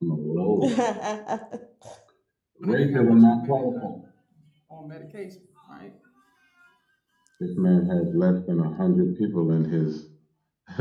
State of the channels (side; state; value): both; identical; correlation 1.00